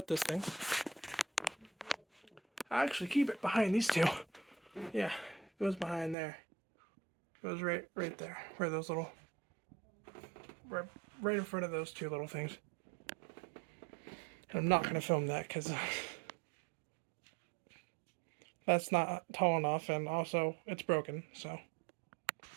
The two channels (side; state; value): left; drops out; at 6.2 s